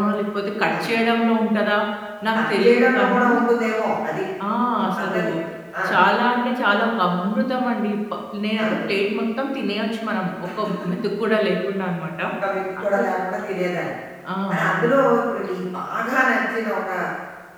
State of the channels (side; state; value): both; identical; correlation 1.00